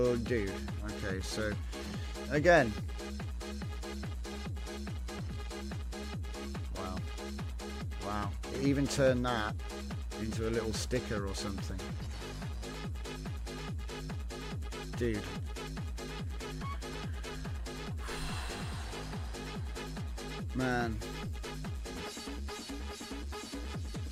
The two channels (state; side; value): identical; both; correlation 1.00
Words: dude. Okay, so again. Wow. Wow. It even turned that into a little sticker or something. Dude. Man.